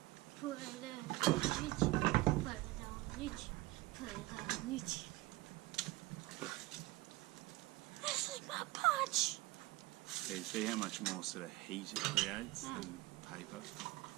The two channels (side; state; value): left; quieter; 19.5 dB